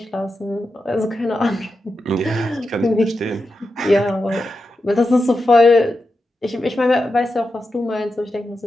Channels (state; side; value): normal; both; correlation 0.89